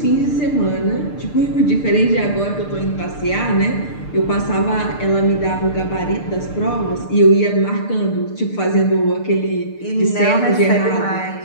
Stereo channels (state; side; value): late; right; 6.7 ms